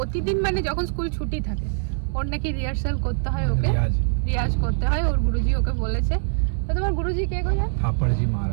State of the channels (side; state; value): left; silent; 61 dB below the other